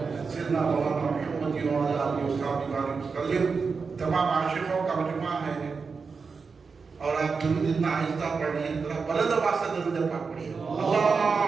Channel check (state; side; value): quieter; left; 5.0 dB